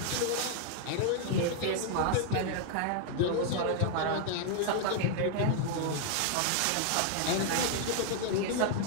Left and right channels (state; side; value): different; both; correlation 0.00